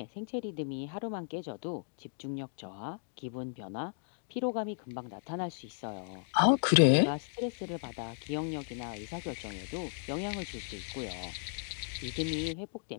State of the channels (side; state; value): right; silent; digital silence